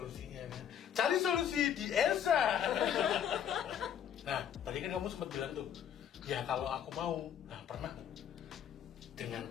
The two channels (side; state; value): right; quieter; 9.1 dB